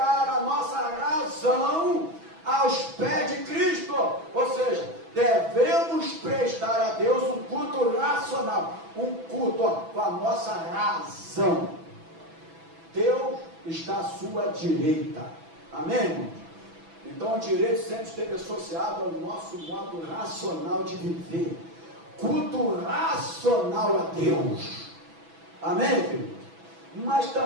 a nossa razão aos pés de Cristo. Ou seja, devemos prestar a Deus um culto racional, um culto com a nossa razão. Deus está à sua direita. Amém, irmãos? Então o direito sempre esteve associado ao nosso modo racional de viver. Culto racional a Deus. Amém, querido? Mas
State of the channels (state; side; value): late; left; 6.1 ms